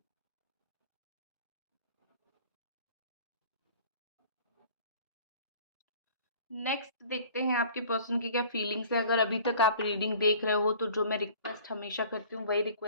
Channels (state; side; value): inverted; both; correlation -0.48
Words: नेक्स्ट देखते हैं आपके पर्सन की क्या फीलिंग्स है। अगर अभी तक आप रीडिंग देख रहे हो, तो जो मैं रिक्वेस्ट हमेशा करती हूँ वही